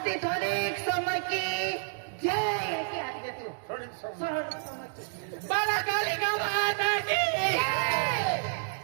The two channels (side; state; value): left; silent; digital silence